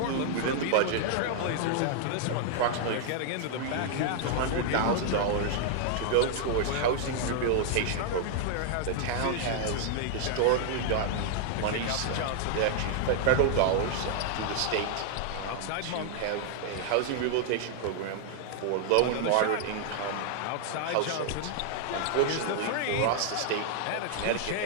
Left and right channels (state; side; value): different; both; correlation 0.00